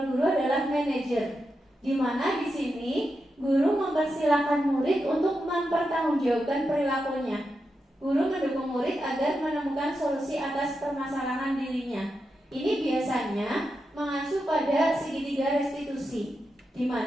guru adalah manajer, di mana di sini guru mempersilahkan murid untuk mempertanggungjawabkan perilakunya. Guru mendukung murid agar menemukan solusi atas permasalahan dirinya. Ini biasanya mengacu pada segitiga restitusi, di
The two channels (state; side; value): normal; both; correlation 0.87